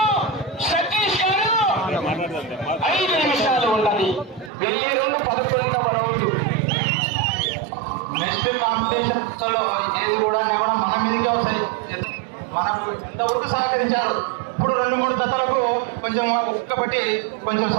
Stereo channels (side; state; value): left; drops out; at 4.5 s